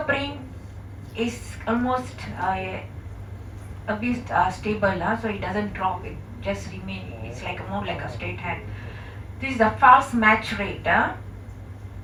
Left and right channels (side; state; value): both; identical; correlation 1.00